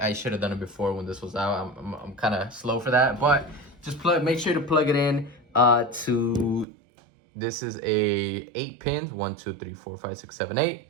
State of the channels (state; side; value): drops out; left; at 6.7 s